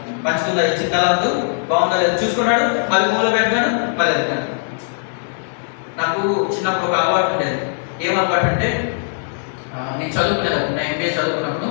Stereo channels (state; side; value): silent; right; digital silence